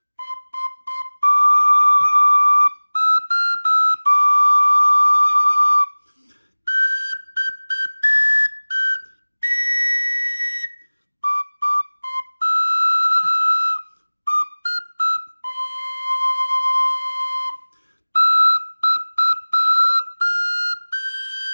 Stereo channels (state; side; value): inverted; both; correlation -1.00